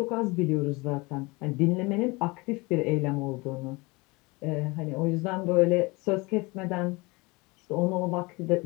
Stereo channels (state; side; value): quieter; right; 25.1 dB